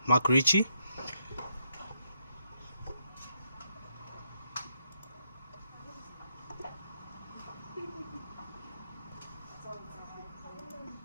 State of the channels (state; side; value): inverted; both; correlation -0.78